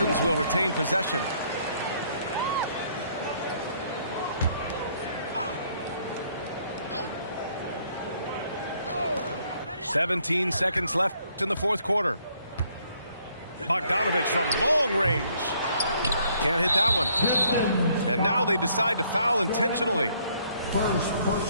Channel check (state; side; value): inverted; both; correlation -0.66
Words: will retain possession. "17 seconds left in the fourth quarter. Bogdanovich from long range. Can't hit that one. And now they decide to foul intentionally. First